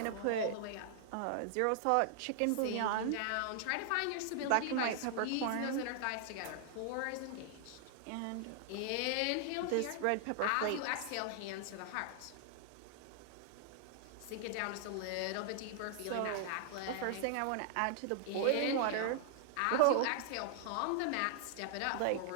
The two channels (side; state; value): both; different; correlation -0.01